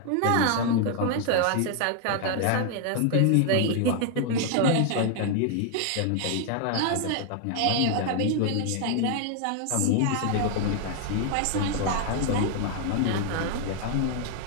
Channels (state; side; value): different; both; correlation 0.00